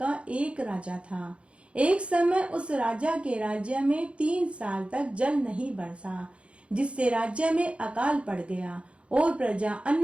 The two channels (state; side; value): late; left; 0.059 ms